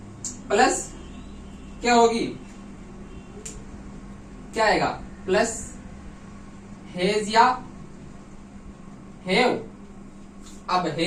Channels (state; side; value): identical; both; correlation 1.00